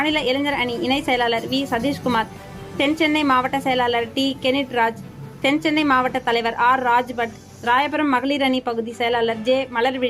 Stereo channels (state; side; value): identical; both; correlation 1.00